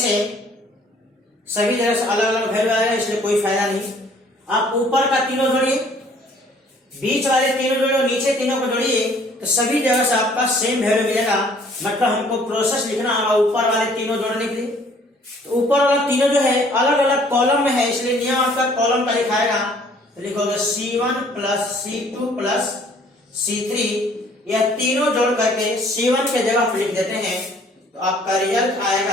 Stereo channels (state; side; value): normal; both; correlation 0.58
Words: सभी जगह से अलग अलग वैल्यू आएगा, इसलिए कोई फायदा नहीं। आप ऊपर का तीनों जोड़िए, बीच वाले तीनों जोड़िए और नीचे तीनों को जोड़िए, तो सभी जगह से आपका सेम वैल्यू मिलेगा। मतलब हमको प्रोसेस लिखना होगा ऊपर वाले तीनों जोड़ने के लिए। तो ऊपर वाला तीनों जो है अलग अलग कॉलम में है, इसलिए नियम आपका कॉलम का लिखाएगा। तो लिखोगे C1 plus C2 plus C3, यह तीनों जोड़ करके C1 के जगह लिख देते हैं। तो आपका रिजल्ट